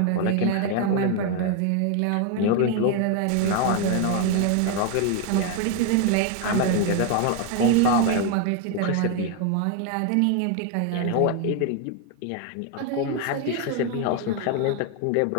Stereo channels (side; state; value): both; different; correlation 0.01